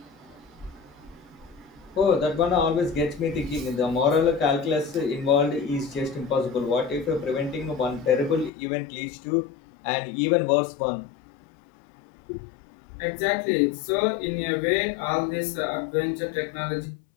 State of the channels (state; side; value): drops out; right; at 8.5 s